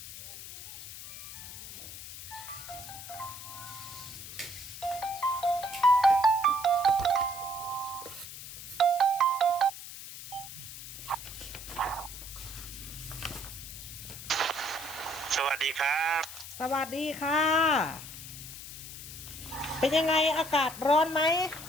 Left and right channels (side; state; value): left; noise; hiss, 11 dB below the sound